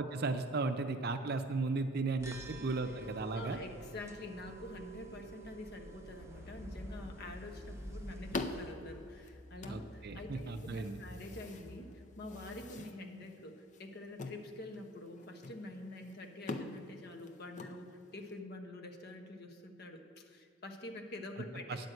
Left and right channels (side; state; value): both; normal; correlation 0.48